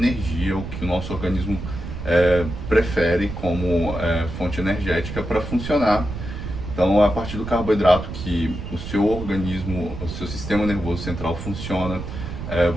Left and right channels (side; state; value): right; noise; rumble, 8 dB below the sound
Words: o que o nosso organismo prefere como fonte energética para funcionar. Então, é a partir do carboidrato que o seu organismo, o seu sistema nervoso central funciona,